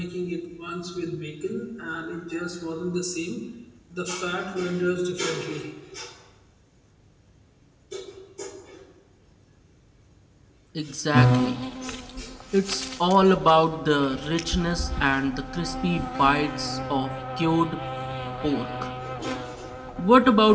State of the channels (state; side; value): identical; both; correlation 1.00